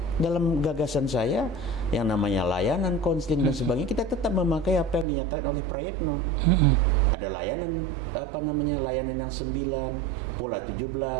dalam gagasan saya yang namanya layanan, konseling dan sebagainya, kita tetap memakai apa yang dinyatakan oleh Prayitno. Ada layanan layanan yang 9, pola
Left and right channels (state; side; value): drops out; left; at 5.1 s